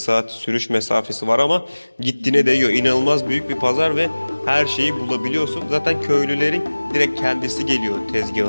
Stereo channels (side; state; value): both; inverted; correlation -1.00